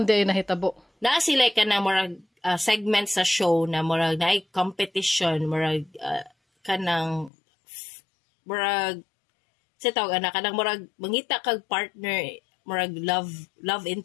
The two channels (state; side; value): drops out; right; at 7.3 s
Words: di ay nahitabo? Naa sila ka na murag segment sa show na murag naay competition, murag kanang murag sa tawag anak kanang murag mangita kag partner, murag love